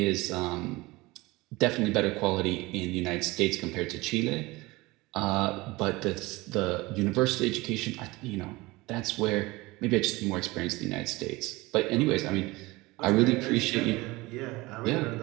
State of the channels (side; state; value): left; quieter; 21.6 dB